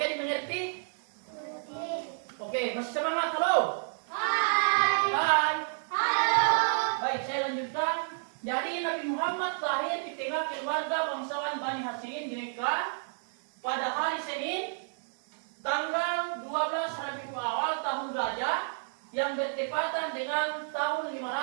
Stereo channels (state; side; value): silent; left; digital silence